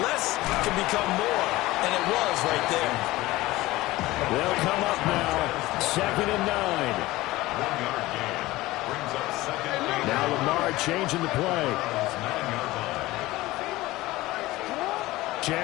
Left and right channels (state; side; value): quieter; right; 18.4 dB